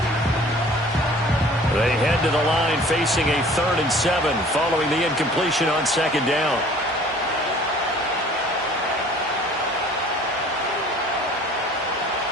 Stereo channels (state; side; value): normal; both; correlation 0.50